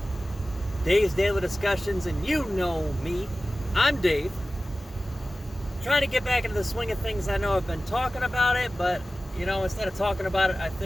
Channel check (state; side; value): normal; both; correlation 0.96